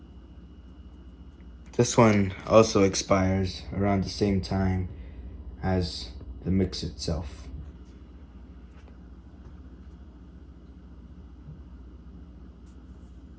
This one also expires around the same time as the mix itself.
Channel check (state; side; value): identical; both; correlation 1.00